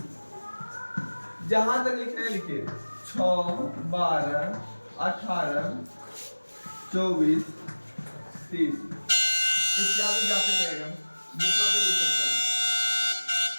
जहां तक लिखना है लिखिए। 6, 12, 18, 24, 30 इत्यादि जाते रहेगा, जितना तो लिख सकते हैं।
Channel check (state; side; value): inverted; both; correlation -1.00